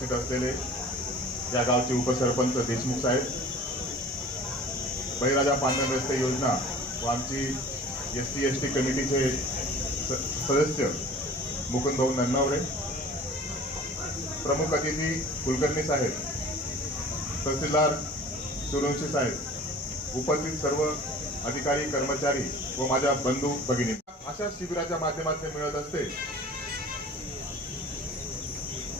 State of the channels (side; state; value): both; normal; correlation 0.44